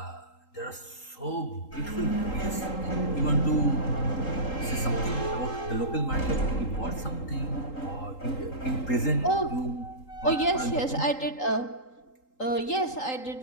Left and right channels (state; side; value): late; right; 3.8 ms